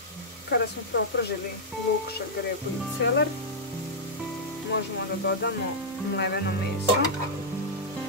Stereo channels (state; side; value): normal; both; correlation -0.08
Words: Kada smo propržili luk, šargarepu i celer, možemo da dodamo mleveno meso.